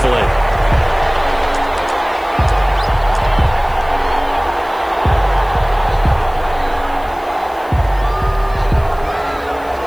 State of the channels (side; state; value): left; noise; hiss, 25 dB below the sound